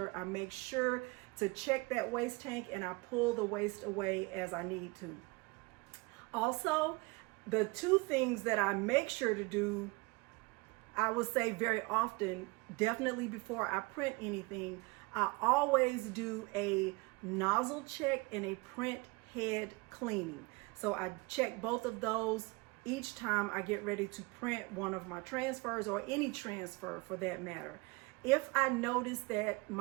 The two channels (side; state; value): left; quieter; 26.1 dB